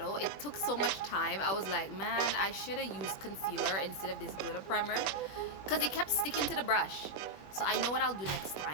it took so much time. I was like, man, I should have used concealer instead of this glitter primer because it kept sticking to the brush. So I know what I'll do next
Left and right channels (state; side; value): late; right; 21 ms